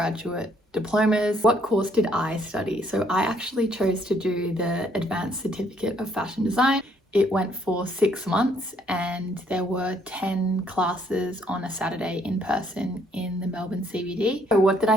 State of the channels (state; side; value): normal; both; correlation 0.67